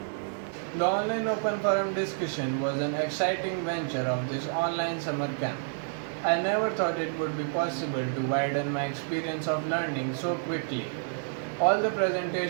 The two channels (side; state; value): left; silent; digital silence